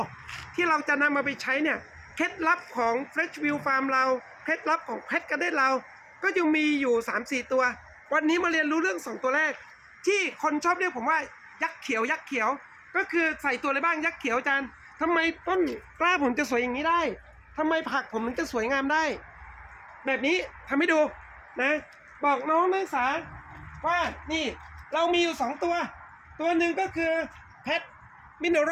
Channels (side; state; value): both; identical; correlation 1.00